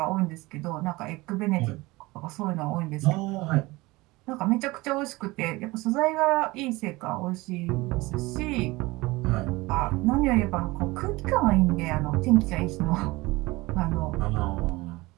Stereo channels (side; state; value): left; quieter; 21.6 dB